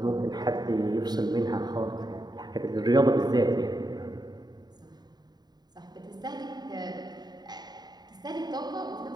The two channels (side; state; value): left; late; 0.20 ms